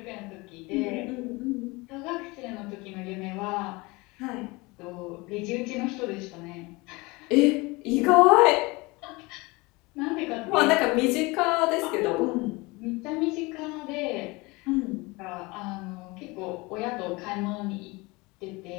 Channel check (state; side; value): quieter; right; 24.4 dB